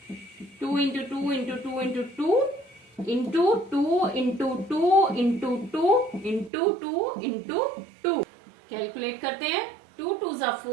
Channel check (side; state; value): left; drops out; at 6.5 s